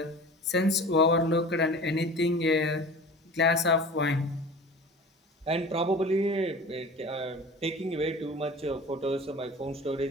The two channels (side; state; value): both; normal; correlation 0.39